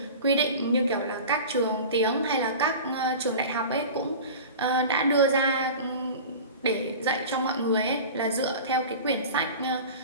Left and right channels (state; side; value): inverted; both; correlation -0.35